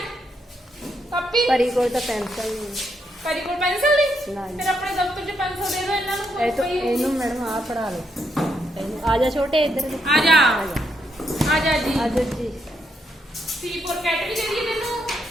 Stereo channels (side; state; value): both; normal; correlation 0.78